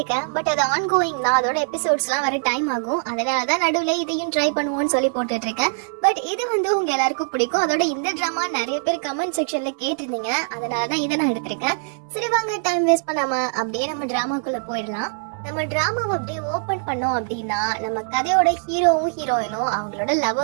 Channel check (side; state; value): left; silent; 64 dB below the other